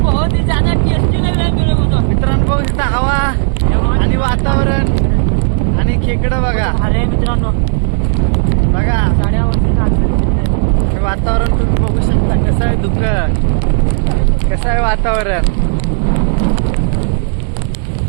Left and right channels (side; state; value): left; silent; digital silence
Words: ही ज्यादा टेस्टी लग रहा है मेरे को तो. मित्रांनो बघू शकता हवा आणि वातावरण आणि खेकडं बघा. अरे मित्रांनो बघा साड्या वरती हे वातावरण तुम्ही बघू शकता कसं आहे. दुःख कसं आहे वातावरण.